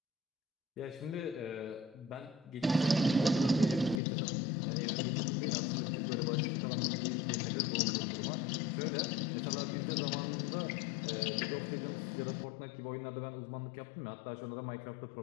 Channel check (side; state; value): right; drops out; at 4.0 s